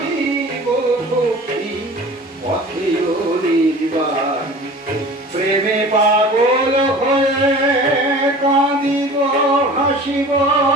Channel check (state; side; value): normal; both; correlation 0.41